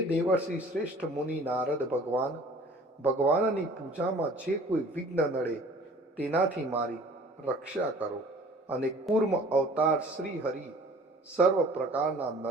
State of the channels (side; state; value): both; normal; correlation 0.50